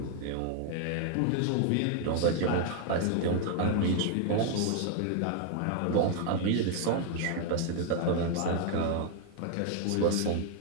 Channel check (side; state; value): both; different; correlation 0.00